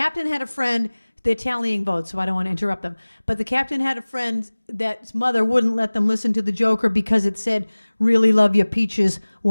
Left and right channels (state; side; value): inverted; both; correlation -1.00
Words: had a friend. They're tallying votes, so I don't want to interrupt them. But the captain had a friend that's mother wouldn't let them listen to the Joker because it said, "Really love your peaches,